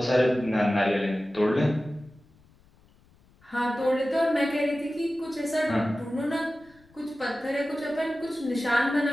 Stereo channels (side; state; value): left; noise; rumble, 30 dB below the sound